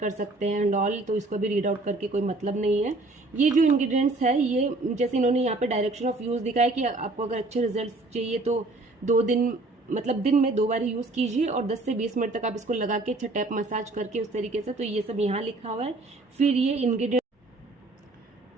सकते हैं एंड ऑल, तो इसको भी रीड आउट करके कोई मतलब नहीं है। ये जो इंग्रेडिएंट्स है, ये जैसे इन्होंने यहाँ पे डायरेक्शन ऑफ यूज़ दिखाया कि आपको अगर अच्छे रिजल्ट चाहिए तो 2 दिन मतलब दिन में 2 बार यूज़ कीजिए और 10 से 20 मिनट तक आप इसको लगा के अच्छा टैप मसाज करके उस तरीके से, तो ये सब यहाँ लिखा हुआ है। फिर ये इंग्रेडिएंट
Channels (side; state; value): left; quieter; 3.0 dB